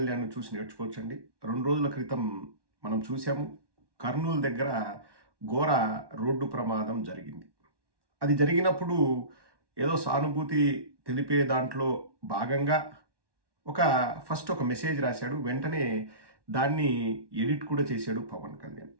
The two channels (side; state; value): left; late; 1.1 ms